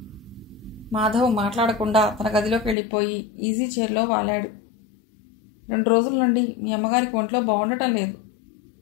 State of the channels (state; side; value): drops out; right; at 2.8 s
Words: మాధవ్ మాట్లాడకుండా తన గదిలోకి వెళ్ళిపోయి ఈజీ చైర్లో వాలాడు. 2 రోజుల నుండి మీ అమ్మగారికి ఒంట్లో బాగుండటం లేదు.